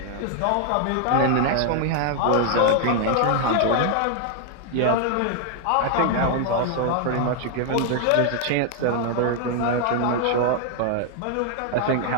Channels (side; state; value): both; different; correlation 0.00